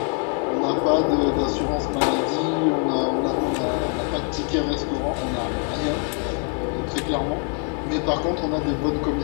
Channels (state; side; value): quieter; right; 36.1 dB